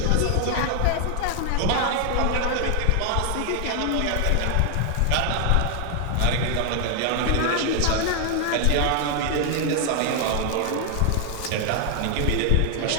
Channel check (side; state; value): both; different; correlation 0.00